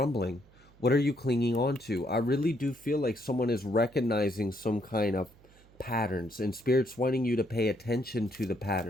What are you clinging on to? I really do feel like someone is recognizing some kind of patterns, and Spirit's wanting you to pay attention to the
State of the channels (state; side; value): noise; right; hum, 27 dB below the sound